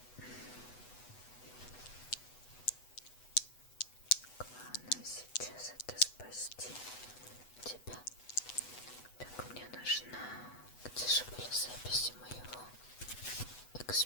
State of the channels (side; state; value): right; late; 8.1 ms